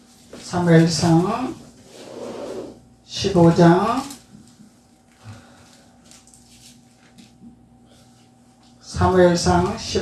사무엘상 15장 사무엘상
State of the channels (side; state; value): both; identical; correlation 1.00